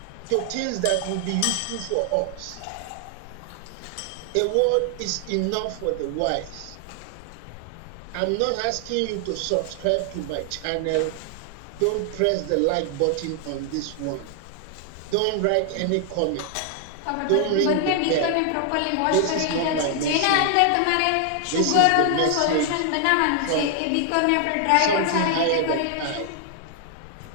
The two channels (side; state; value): both; different; correlation 0.00